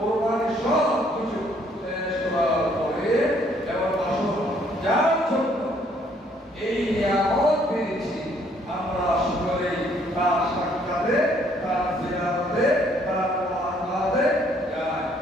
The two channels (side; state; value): both; normal; correlation 0.65